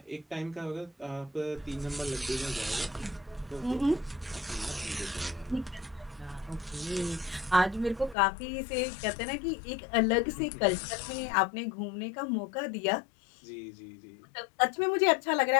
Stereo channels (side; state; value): right; drops out; at 8.2 s